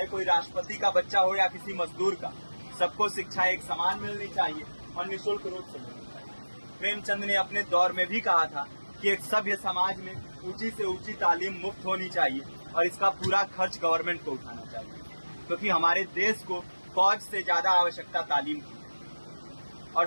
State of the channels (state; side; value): inverted; both; correlation -1.00